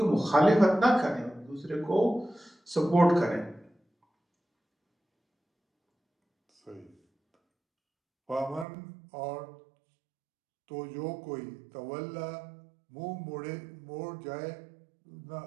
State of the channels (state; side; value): drops out; left; at 8.7 s